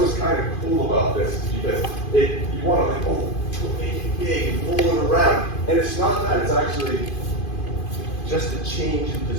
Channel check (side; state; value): right; late; 2.5 ms